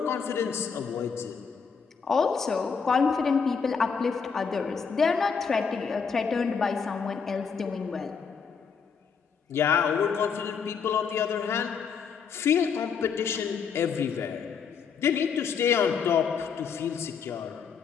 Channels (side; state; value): right; quieter; 6.2 dB